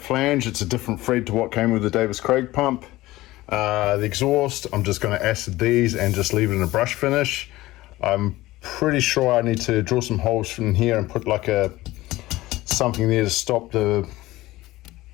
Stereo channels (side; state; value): right; quieter; 17.9 dB